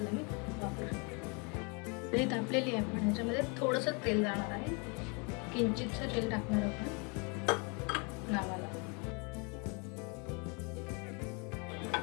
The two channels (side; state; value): right; quieter; 33.0 dB